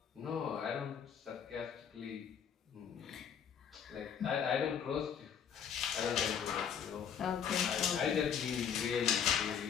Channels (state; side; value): quieter; right; 7.8 dB